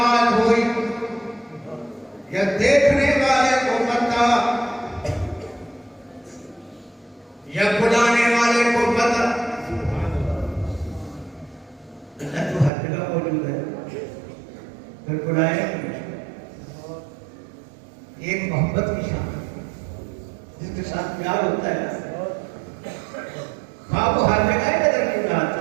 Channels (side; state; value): left; drops out; at 12.7 s